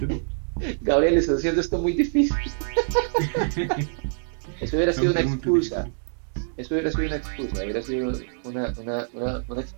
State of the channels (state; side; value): silent; left; 58 dB below the other